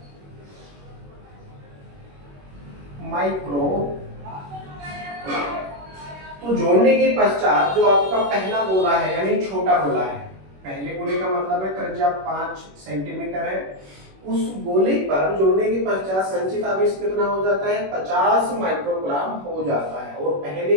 तो जोड़ने के पश्चात जो आपका पहला गोला है यानी छोटा गोला है, पहले गोले का मतलब है त्रिज्या 5 सेंटीमीटर है, उस गोले पर जोड़ने के पश्चात संचित आवेश कितना हो जाता है? 50 माइक्रोग्राम हो जाता है। और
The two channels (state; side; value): late; left; 21 ms